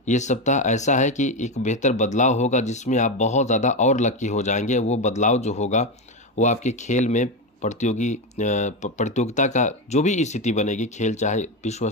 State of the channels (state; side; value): normal; both; correlation 0.13